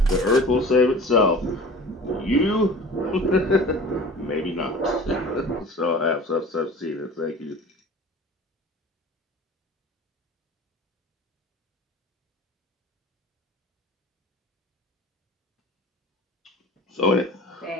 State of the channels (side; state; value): both; normal; correlation 0.41